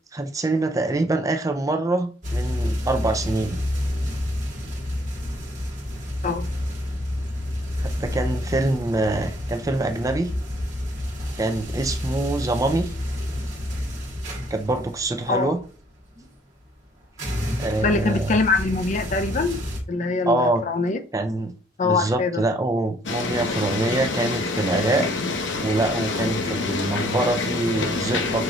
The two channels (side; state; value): both; normal; correlation 0.63